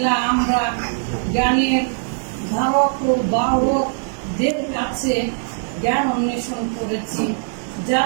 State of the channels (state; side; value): silent; left; digital silence